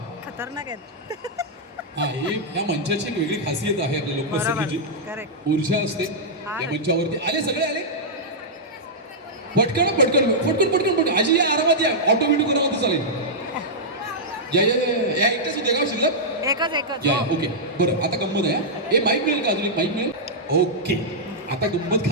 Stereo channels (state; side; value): normal; both; correlation -0.09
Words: खतरनाक आहे. हा, हे या मंचाची एक वेगळी खासियत आहे आपल्या लोकसंगीची. ऊर्जा असते या मंचावरती. आले, सगळे आले. पटकन पटकन पटकन पटकन पटकन. आजी या, आरामात या, ऑटो व्हिडिओ करा म्हणते चालेल. या एकटाच होते का शिल्लक? एकच. या, ओके. बरं, आता गंमत आहे. हे माईक मिळेल का? अजून एक माईक मिळेल? ओके, आता गंमत